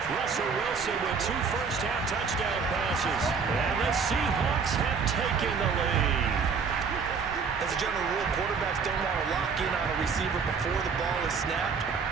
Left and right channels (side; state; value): left; quieter; 5.5 dB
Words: Russell Wilson with 2 first-half touchdown passes, and the Seahawks have taken the lead. As a general rule, quarterbacks don't want to lock in on a receiver before the ball is snapped,